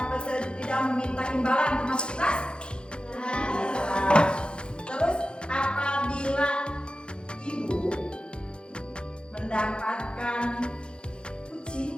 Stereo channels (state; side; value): late; right; 0.052 ms